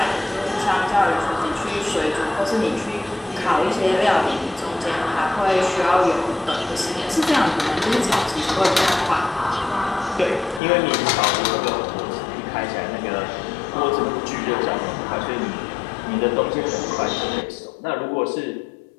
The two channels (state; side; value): drops out; right; at 10.6 s